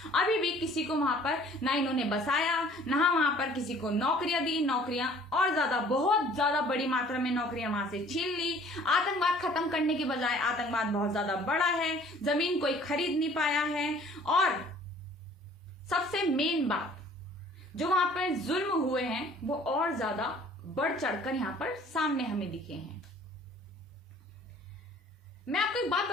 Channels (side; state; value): both; normal; correlation 0.53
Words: अभी भी किसी को वहां पर ना इन्होंने बसाया, ना वहां पर किसी को नौकरियां दी। नौकरियां और ज्यादा, बहुत ज्यादा बड़ी मात्रा में नौकरियां वहां से छीन ली। आतंकवाद खत्म करने के बजाय आतंकवाद बहुत ज्यादा बढ़ा है, जमीन कोई खरीद नहीं पाया है। और सबसे मेन बात, जो वहां पर जुल्म हुए हैं वो और ज्यादा बढ़ चढ़कर यहां पर सामने हमें दिखे हैं। मैं आपको एक बात